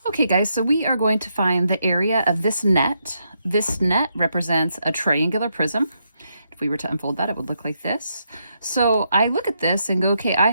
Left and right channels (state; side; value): inverted; both; correlation -0.79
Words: Okay guys, so we are going to find the area of this net. This net represents a triangular prism. If we were to unfold that, it would look like this. So I look at this and go, okay, I